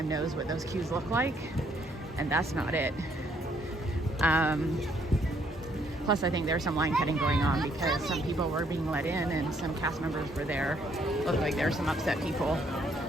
knows what those queues look like, and that's not it. Plus, I think there's some line cutting going on because some people were being let in and some cast members were there. Looked like there were some upset people.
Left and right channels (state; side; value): normal; both; correlation 0.68